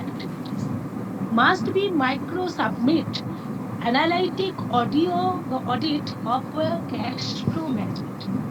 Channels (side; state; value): both; identical; correlation 1.00